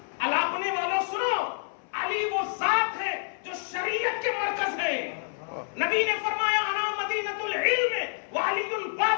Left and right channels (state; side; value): silent; right; 59 dB below the other